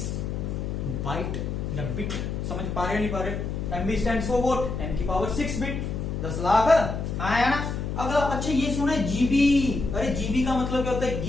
बाइट या बिट। समझ पा रहे नहीं पा रहे? एमबी स्टैंड फॉर व्हाट, 10 की पावर 6 बिट, 10 लाख आया ना। अगला अच्छा ये सुना है जीबी, अरे जीबी का मतलब क्या होता है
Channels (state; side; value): noise; left; hum, 3 dB below the sound